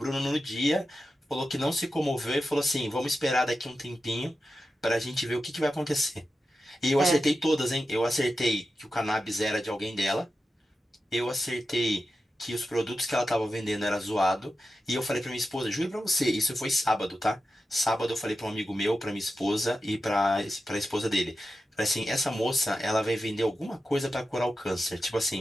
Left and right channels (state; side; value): normal; both; correlation 0.91